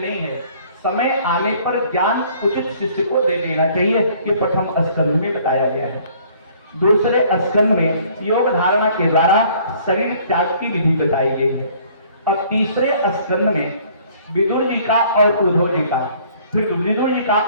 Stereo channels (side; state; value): both; inverted; correlation -0.57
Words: नहीं है, समय आने पर ज्ञान उचित शिष्य को दे देना चाहिए, ये प्रथम स्कंद में बताया गया है। दूसरे स्कंद में योग धारणा के द्वारा शरीर त्याग की विधि बताई गई है। और तीसरे स्कंद में विदुर जी का और उद्धव जी का, फिर विदुर जी का